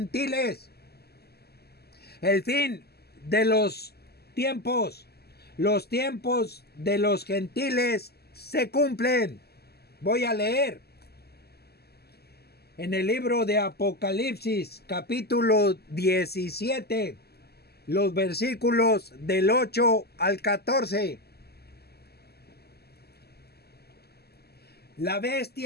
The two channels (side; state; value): right; late; 0.46 ms